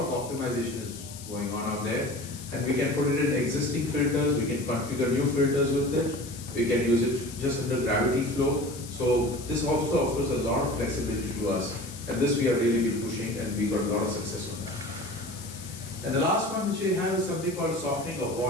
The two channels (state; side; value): noise; left; hiss, 14 dB below the sound